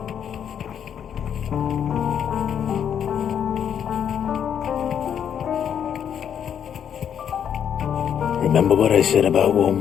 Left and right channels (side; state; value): right; quieter; 8.6 dB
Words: Remember what I said about warm